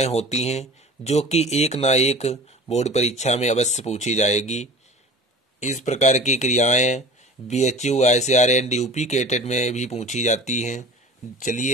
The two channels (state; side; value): normal; both; correlation 0.39